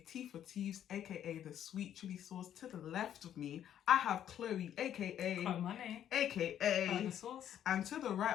T for Teeves, aka the sweet chili sauce. To the left of me, I have Chloe, aka Money, aka the sauce. And to the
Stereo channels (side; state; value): right; quieter; 10.4 dB